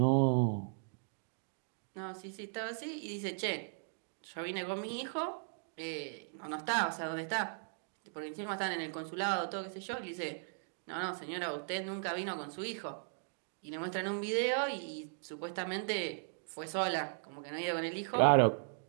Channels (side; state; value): left; silent; digital silence